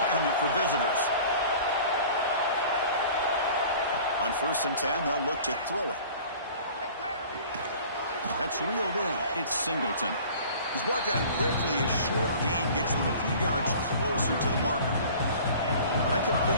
for visitors. On 1st and 10, they'll look to throw it. That's reeled in. It's Singleton. He's brought down quickly. A short gain gets them a few yards closer to the marker. That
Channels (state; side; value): inverted; both; correlation -0.45